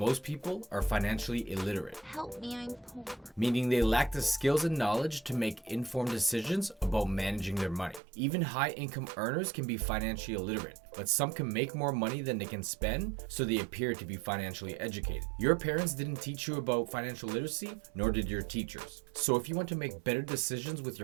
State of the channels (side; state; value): left; drops out; at 8.0 s